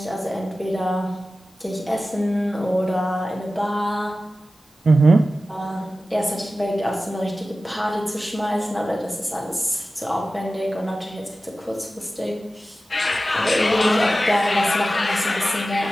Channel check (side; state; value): both; normal; correlation 0.95